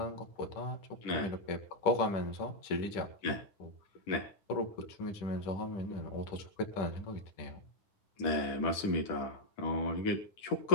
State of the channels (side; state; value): right; late; 10 ms